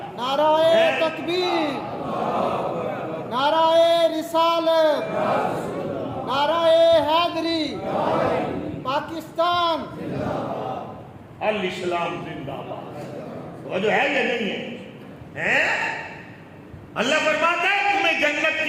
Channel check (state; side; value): identical; both; correlation 1.00